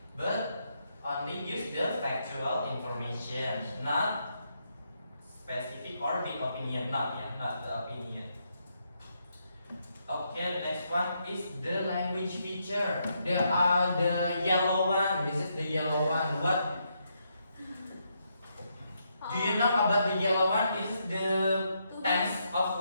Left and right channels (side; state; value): both; inverted; correlation -0.79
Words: But only use the factual information, not specific or big opinion, not the opinion. Okay, next one is the language feature. There are the yellow one. This is the yellow one. What do you know about the yellow one? This is the tense